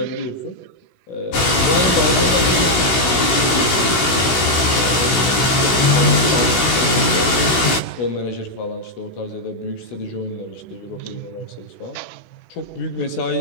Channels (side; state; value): right; late; 16 ms